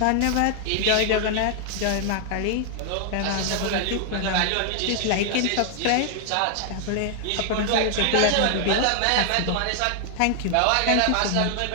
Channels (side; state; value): both; different; correlation 0.00